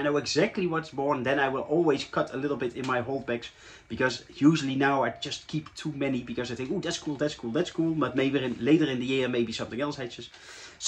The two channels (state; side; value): identical; both; correlation 1.00